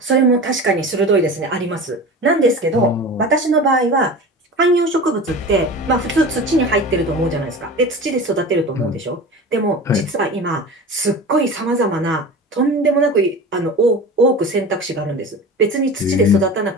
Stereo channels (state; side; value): normal; both; correlation 0.33